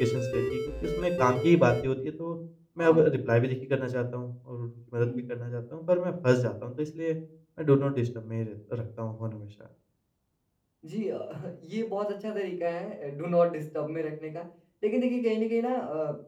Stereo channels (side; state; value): both; identical; correlation 1.00